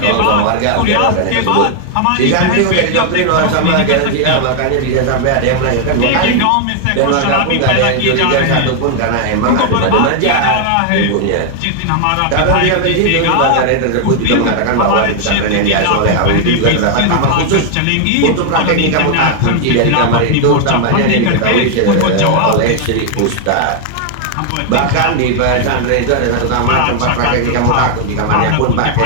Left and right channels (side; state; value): both; different; correlation 0.00